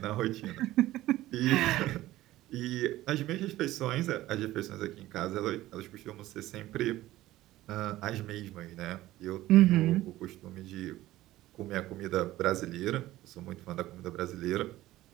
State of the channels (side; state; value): left; quieter; 16.0 dB